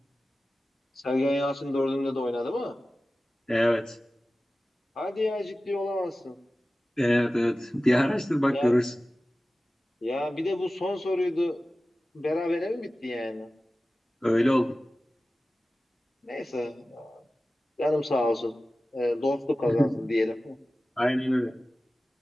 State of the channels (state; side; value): normal; both; correlation 0.96